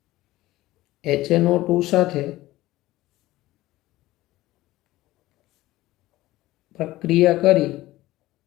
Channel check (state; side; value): quieter; right; 17.2 dB